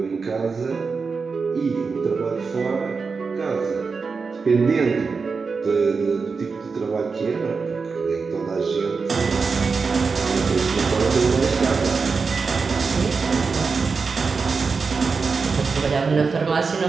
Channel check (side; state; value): left; quieter; 4.9 dB